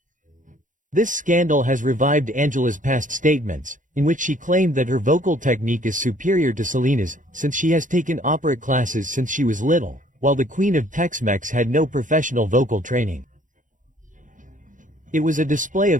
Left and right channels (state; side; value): late; left; 0.37 ms